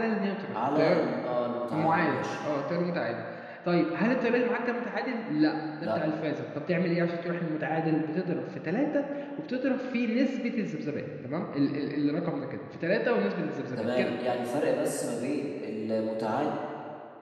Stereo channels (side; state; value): both; identical; correlation 1.00